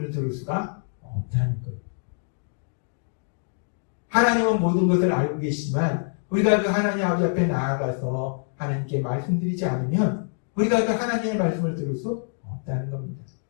들을 수가 없다는 거예요. 하나님은 모든 것을 알고 계시지만 우리가 그 하나님 아버지 앞에 나아가서 하나님께 말씀드리지 않으면 우리가 그 하나님의 말씀을 들을 수 없다는 겁니다.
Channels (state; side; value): silent; right; digital silence